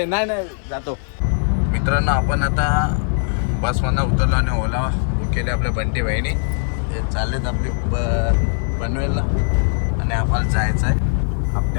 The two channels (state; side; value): silent; right; digital silence